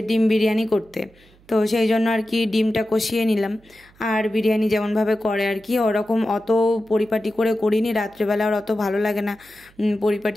ডিম বিরিয়ানি করতে, তো সেই জন্য আর কি ডিমটা কষিয়ে নিলাম। আর বিরিয়ানি যেমনভাবে করে আর কি, ওরকম অত পরিপাটি করে করিনি, রাত্রেবেলা আর অত ভালো লাগে না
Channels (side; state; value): right; noise; hum, 29 dB below the sound